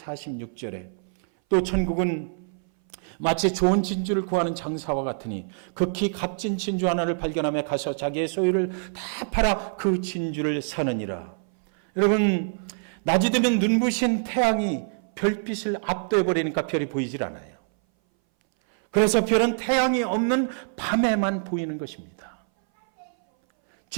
또 천국은 마치 좋은 진주를 구하는 장사와 같으니 극히 값진 진주 하나를 발견하며 가서 자기의 소유를 다 팔아 그 진주를 사느니라. 여러분, 낮이 되면 눈부신 태양이 별빛을 압도해버리니까 별이 보이질 않아요. 그래서 별은 태양이 없는 밤에만 보이는 것입니다.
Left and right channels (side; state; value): left; silent; 59 dB below the other